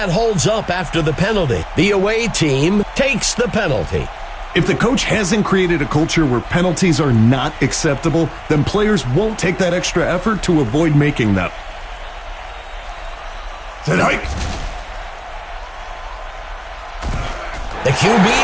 holds up after the penalty. The away team takes the penalty. If the coach hasn't created a culture where penalties are not acceptable, then players won't take that extra effort to avoid making them. The QB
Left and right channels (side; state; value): both; identical; correlation 1.00